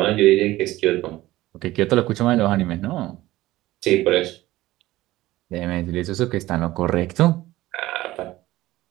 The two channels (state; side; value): quieter; left; 17.0 dB